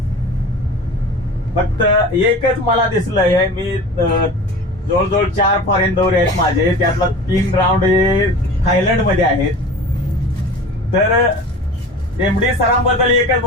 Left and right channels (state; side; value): normal; both; correlation 0.37